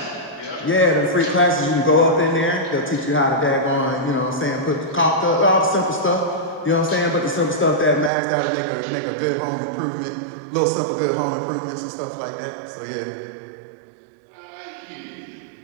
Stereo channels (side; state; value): left; drops out; at 8.1 s